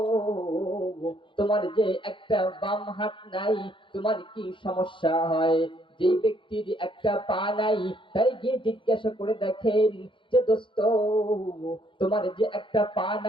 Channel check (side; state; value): right; late; 0.24 ms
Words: তোমার যে একটা বাম হাত নাই, তোমার কি সমস্যা হয়? যেই ব্যক্তির একটা পা নাই তাই গিয়ে জিজ্ঞাসা করে দেখেন যে দোস্ত তোমার যে একটা পা